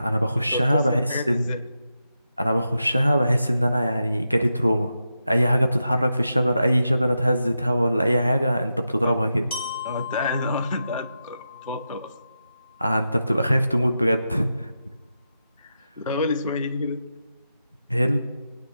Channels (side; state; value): both; inverted; correlation -0.88